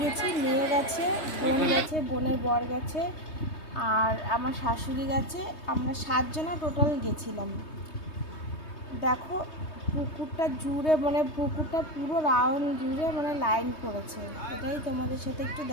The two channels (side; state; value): right; late; 3.2 ms